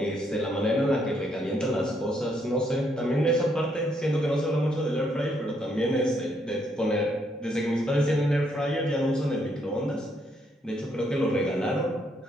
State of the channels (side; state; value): both; normal; correlation 0.73